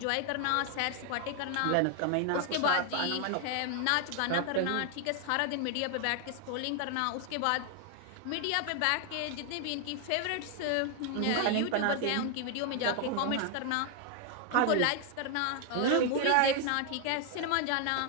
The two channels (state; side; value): different; both; correlation 0.00